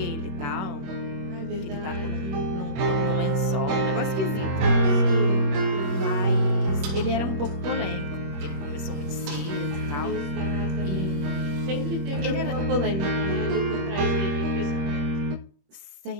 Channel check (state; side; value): late; left; 21 ms